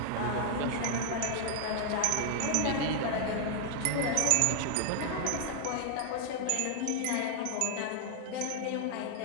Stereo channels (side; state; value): both; different; correlation 0.00